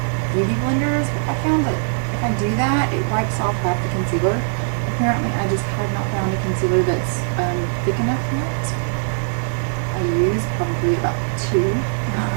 beauty blenders, but I found that if I do that, it wipes off half the concealer. Apparently, I just have not found a concealer that's thick enough yet. I use probably about 2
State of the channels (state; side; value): silent; left; digital silence